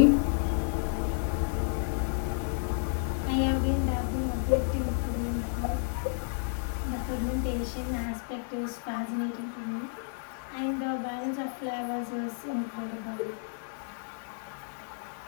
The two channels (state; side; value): silent; right; digital silence